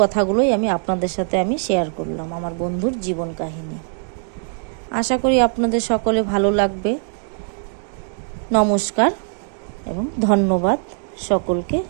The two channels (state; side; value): silent; left; 55 dB below the other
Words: আপনাদের সাথে শেয়ার করলাম, আমার বন্ধুর জীবন কাহিনী। আশা করি আপনাদের সকলে ভালো লাগবে। নমস্কার এবং ধন্যবাদ সকলকে